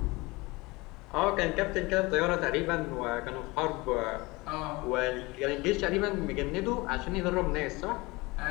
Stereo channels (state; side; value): quieter; right; 23.3 dB